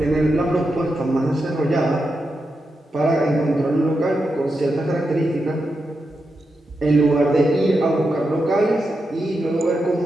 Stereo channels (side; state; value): both; normal; correlation 0.87